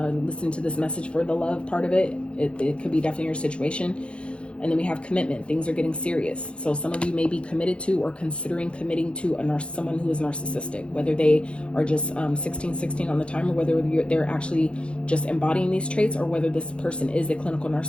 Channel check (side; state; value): right; late; 0.058 ms